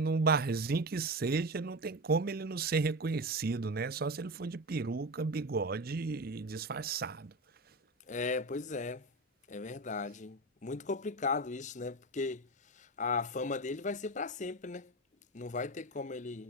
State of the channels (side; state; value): both; normal; correlation 0.23